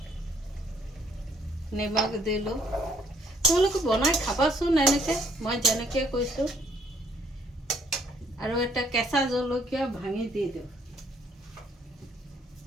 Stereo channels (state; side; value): normal; both; correlation 0.66